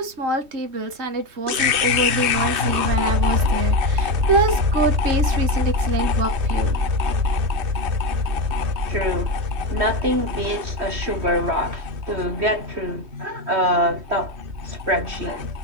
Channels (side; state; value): left; late; 3.2 ms